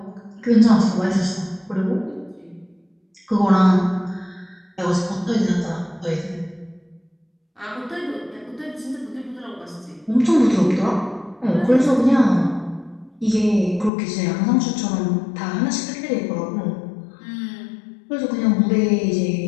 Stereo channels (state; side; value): drops out; right; at 13.9 s